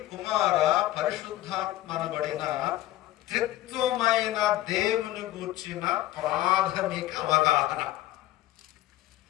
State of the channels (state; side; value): quieter; right; 15.2 dB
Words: కుమార, పరిశుద్ధాత్మనబడిన త్రిత్వమైన దేవుని గూర్చిన ప్రాథమిక అవగాహన.